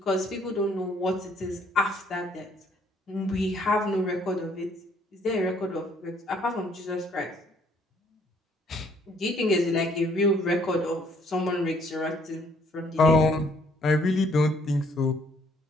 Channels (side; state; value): both; normal; correlation 0.64